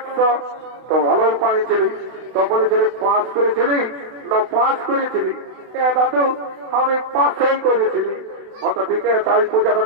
তো ভালোই পাইছিলি। তো বলেছিলি পাস করেছিলি না পাস করেছিলি? দাদু আমি পাসই করেছিলি। হয়তো ঠিক আছে, তাই পূজাটা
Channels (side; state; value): left; late; 31 ms